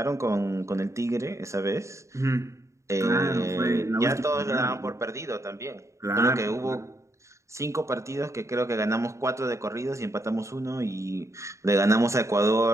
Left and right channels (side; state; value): left; late; 0.14 ms